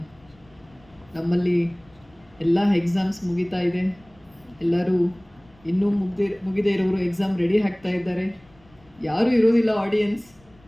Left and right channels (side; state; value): left; noise; rumble, 29 dB below the sound